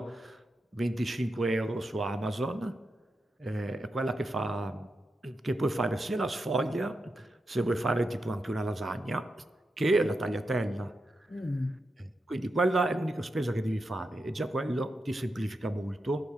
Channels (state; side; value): normal; both; correlation 0.87